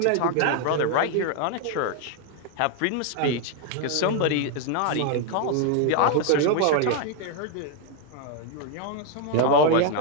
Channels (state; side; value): different; both; correlation 0.00